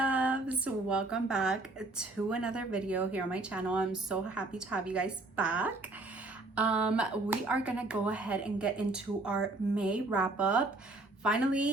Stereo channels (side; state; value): left; quieter; 3.0 dB